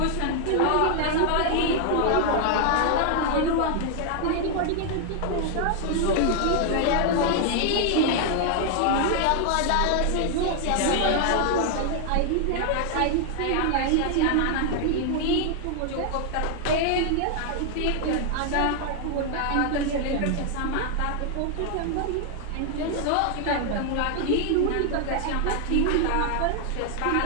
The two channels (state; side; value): different; both; correlation 0.00